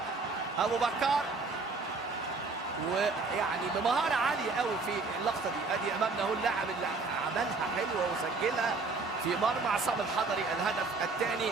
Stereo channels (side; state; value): left; quieter; 4.0 dB